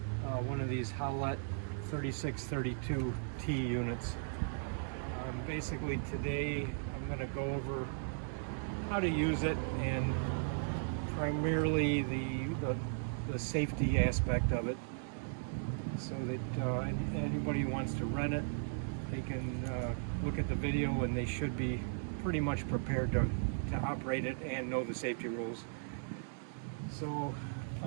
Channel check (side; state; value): left; silent; digital silence